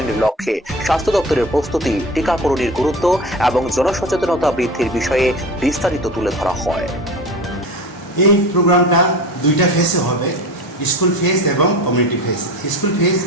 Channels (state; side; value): normal; both; correlation 0.32